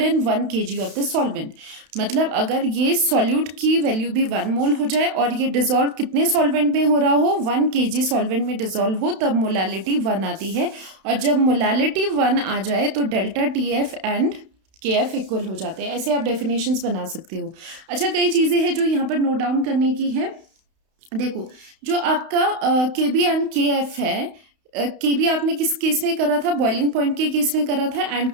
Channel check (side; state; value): left; late; 31 ms